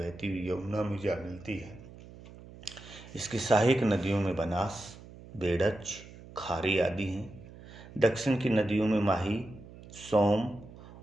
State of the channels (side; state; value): right; noise; hum, 18 dB below the sound